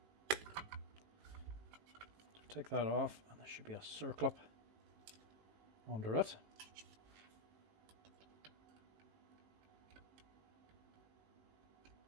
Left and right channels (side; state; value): left; late; 19 ms